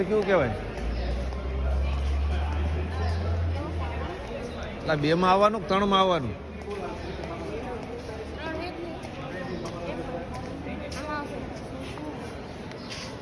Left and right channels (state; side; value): identical; both; correlation 1.00